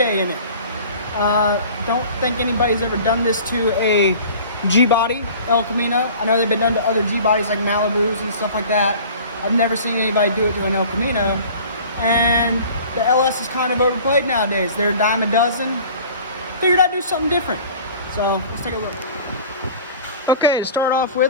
in it. Don't think anybody's ever done this to a G-body El Camino. I know they've been done to other G-bodies like Malibus and stuff like that. I've never seen anybody do it to an El Camino. And the LS is kind of overplayed nowadays. They're a dime a dozen. Figured I'd do something different. So let's take a look. Okay, to start off with,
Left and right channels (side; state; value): both; inverted; correlation -0.44